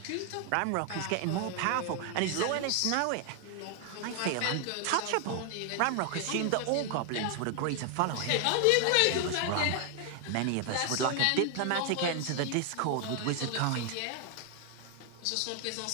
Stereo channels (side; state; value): both; different; correlation 0.00